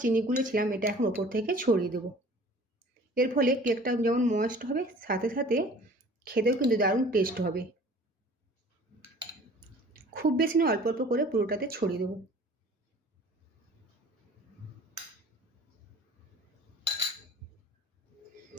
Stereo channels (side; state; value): both; normal; correlation 0.48